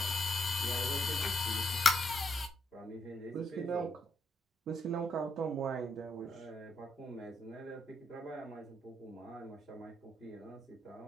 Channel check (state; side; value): normal; both; correlation 0.77